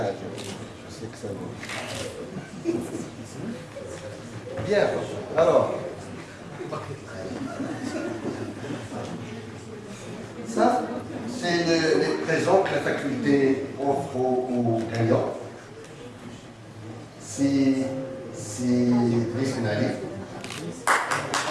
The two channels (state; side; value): identical; both; correlation 1.00